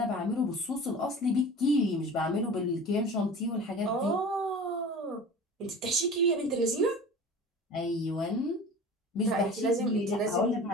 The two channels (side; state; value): both; normal; correlation 0.38